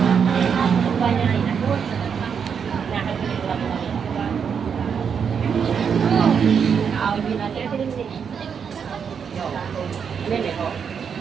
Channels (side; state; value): left; quieter; 6.9 dB